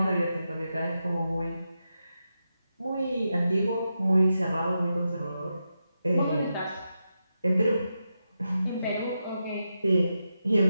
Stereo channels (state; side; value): inverted; both; correlation -0.88